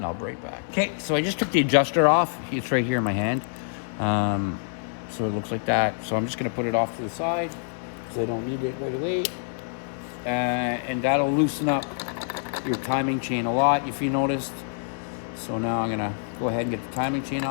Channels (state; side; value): silent; right; 61 dB below the other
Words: I'll be right back. Okay, so I just took the adjuster off. It's right here in my hand. So it looks like that. So I'm just going to put it off to the side because I don't need it right away. And that'll loosen up your timing chain a lot if you noticed. So now I'm gonna go ahead and get the timing chain